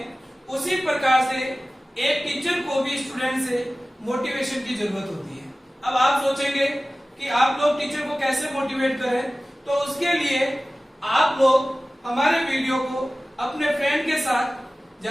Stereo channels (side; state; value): both; normal; correlation 0.97